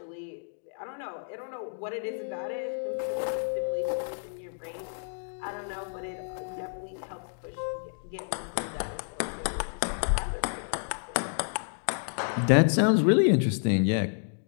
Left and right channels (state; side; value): silent; right; digital silence